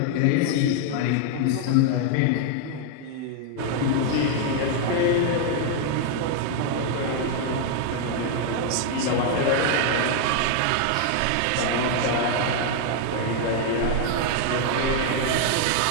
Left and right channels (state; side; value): different; both; correlation 0.00